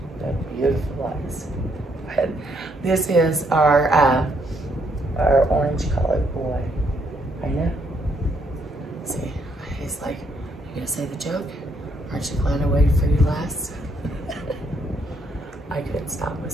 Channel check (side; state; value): both; normal; correlation 0.72